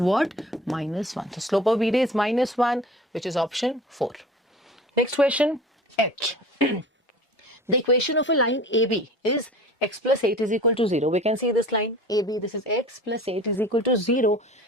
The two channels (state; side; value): normal; both; correlation 0.41